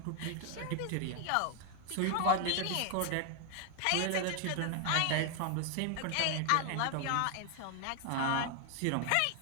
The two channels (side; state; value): both; different; correlation 0.00